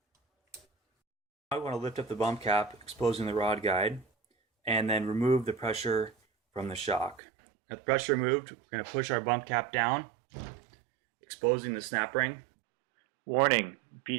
Now we want to lift up the bump cap, exposing the rod guide, and then remove the pressure from the shock. Now the pressure removed, we're going to push our bump cap down, exposing the snap ring. Warning: be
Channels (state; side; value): drops out; left; at 7.2 s